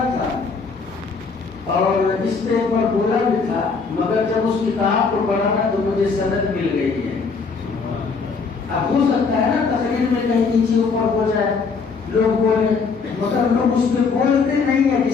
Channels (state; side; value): quieter; right; 4.9 dB